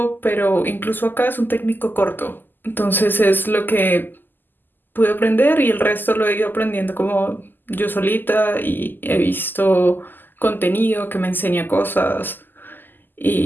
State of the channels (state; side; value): late; right; 0.090 ms